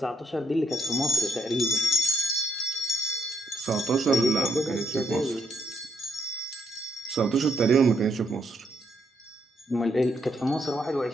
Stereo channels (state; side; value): normal; both; correlation 0.75